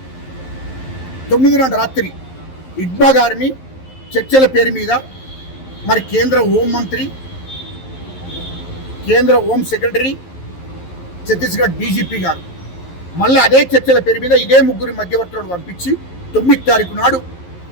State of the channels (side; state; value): right; late; 11 ms